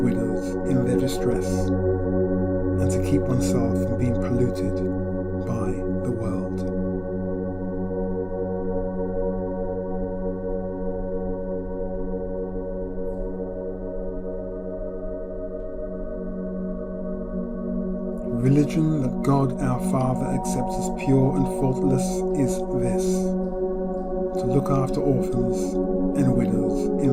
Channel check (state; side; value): identical; both; correlation 1.00